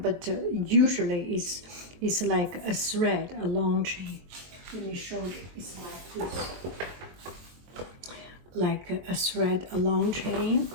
usually it's like a thread, a long chain. Let me show you. It's like this, like a thread, a long chain.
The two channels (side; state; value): left; late; 22 ms